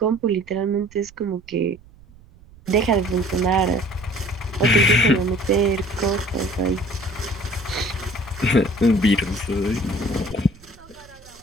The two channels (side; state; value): right; noise; rumble, 24 dB below the sound